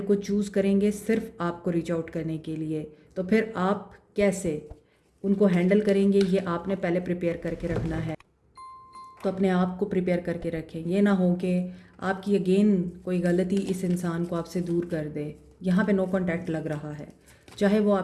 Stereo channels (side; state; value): both; identical; correlation 1.00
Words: चूज़ करेंगे सिर्फ आपको रीच आउट करने के लिए। तो फिर आप कैसे उनको हैंडल करेंगे, ये आपने पहले प्रिपेयर करके रखना है। तो अपने आप को प्रिपेयर करके रखें। ये ना हो कि आपकी अगेन कोई गलती इस इंसान को आपसे दूर कर दे। यहाँ पे नो कांटेक्ट लग रहा है, चाहे वो